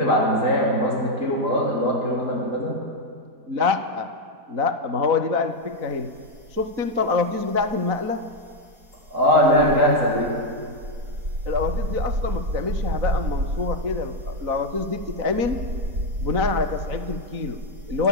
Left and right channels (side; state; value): left; late; 4.0 ms